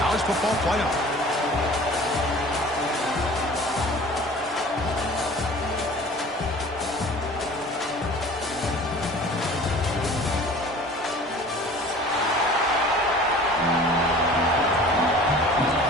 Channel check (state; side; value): normal; both; correlation 0.45